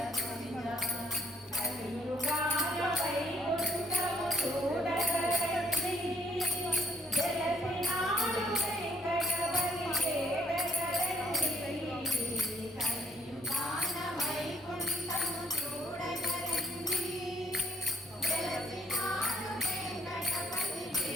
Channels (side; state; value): both; normal; correlation 0.64